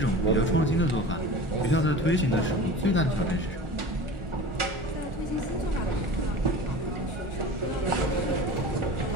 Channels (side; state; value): both; normal; correlation 0.36